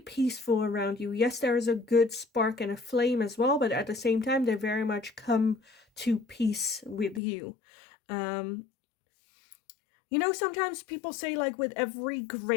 around you. Yes, there is a good spark and a flame as well, but at the same time, they very much come to peace with you. You know, sometimes people say, like, with every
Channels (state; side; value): drops out; right; at 7.2 s